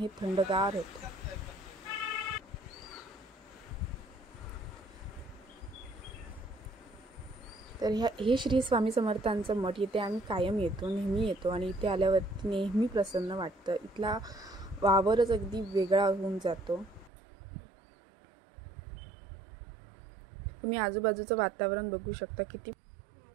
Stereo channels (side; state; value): left; drops out; at 17.1 s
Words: थंडगार होतं. तर हे श्री स्वामी समर्थांचं मठ, इथे आम्ही कायम येतो, नेहमी येतो आणि इथे आल्यावरती नेहमी प्रसन्न वाटतं. इथला वावरच अगदी वेगळा होऊन जातो. तुम्ही आजूबाजूचं वातावरण बघू शकता किती.